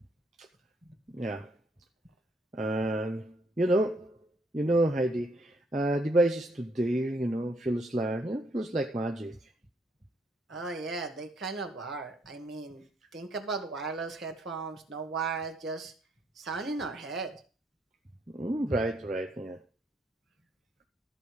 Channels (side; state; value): both; normal; correlation 0.71